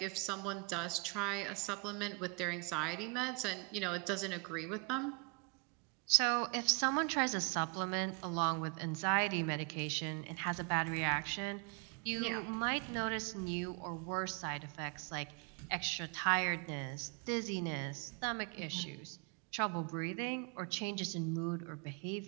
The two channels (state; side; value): quieter; left; 32.4 dB